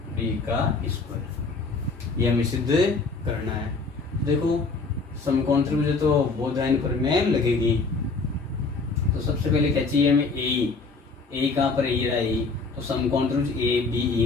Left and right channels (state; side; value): quieter; right; 4.1 dB